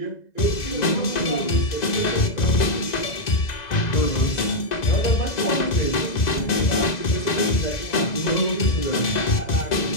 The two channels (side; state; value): right; late; 2.0 ms